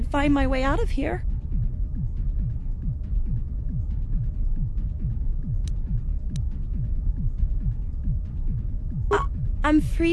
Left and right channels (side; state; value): both; identical; correlation 1.00